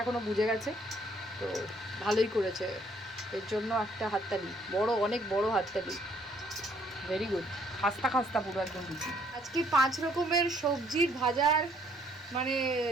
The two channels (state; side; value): normal; both; correlation 0.65